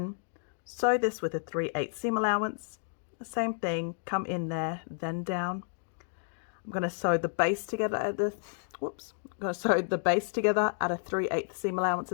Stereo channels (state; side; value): silent; right; digital silence